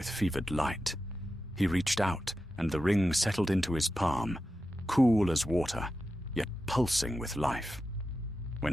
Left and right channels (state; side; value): normal; both; correlation 0.91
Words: fevered light. He reached out, and the ring settled into his palm, cool as water, yet pulsing with life. When